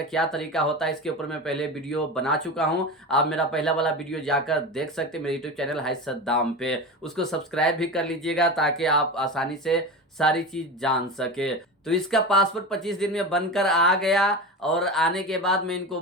क्या तरीका होता है इसके ऊपर मैं पहले वीडियो बना चुका हूं। आप मेरा पहला वाला वीडियो जाकर देख सकते हैं मेरे यूट्यूब चैनल हाय सद्दाम पे। उसको सब्सक्राइब भी कर लीजिएगा ताकि आप आसानी से सारी चीज़ जान सके। तो इसका पासपोर्ट 25 दिन में बनकर आ गया और आने के बाद मैं इनको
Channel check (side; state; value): both; normal; correlation 0.26